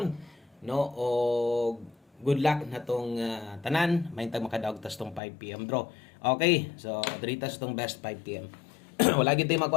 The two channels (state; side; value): drops out; right; at 5.2 s